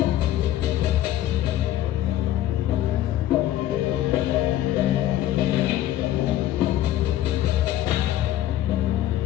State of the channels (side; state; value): right; quieter; 13.2 dB